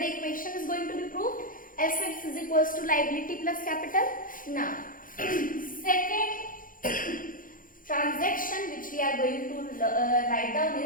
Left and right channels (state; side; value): late; right; 0.40 ms